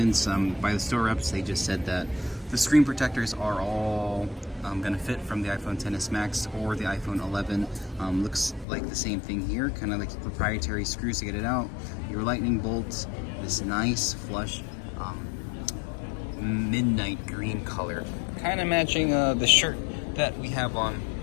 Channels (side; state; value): right; drops out; at 8.7 s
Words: By the store reps, they just said that the screen protectors are all gonna fit from the iPhone XS Max or the iPhone 11. Looks like the same thing here, kind of like proprietary screws to get it out. Your lightning bolts, this nice flush midnight green color, kind of matching the shirt that we have on